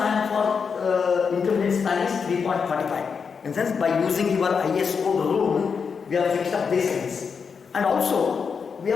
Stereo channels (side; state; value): right; quieter; 5.9 dB